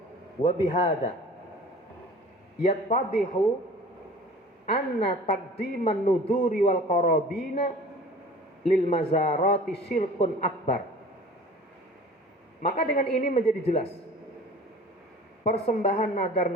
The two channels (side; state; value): both; normal; correlation 0.43